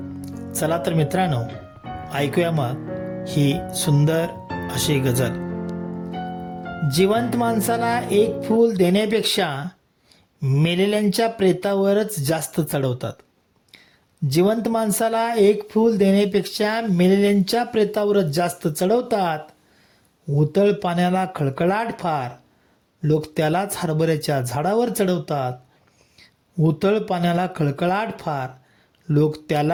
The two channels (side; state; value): both; identical; correlation 1.00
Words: चला तर मित्रांनो, ऐकूया मग ही सुंदर अशी गझल. जिवंत माणसाला एक फूल देण्यापेक्षा मेलेल्यांच्या प्रेतावरच जास्त चढवतात. जिवंत माणसाला एक फूल देण्यापेक्षा मेलेल्यांच्या प्रेतावरच जास्त चढवतात. उतळ पाण्याला खळखळाट फार, लोक त्यालाच हरभऱ्याच्या झाडावर चढवतात. उतळ पाण्याला खळखळाट फार, लोक